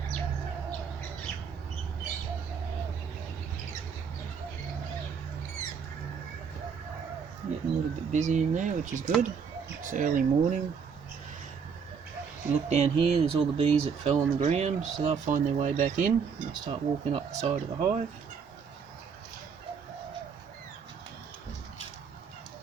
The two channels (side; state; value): left; quieter; 6.4 dB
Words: Getting a little bit busy in there, which is good. It's early morning. If you look down here, there's all the bees that fell on the ground, so they'll find their way back in and they'll start walking up the side of the hive.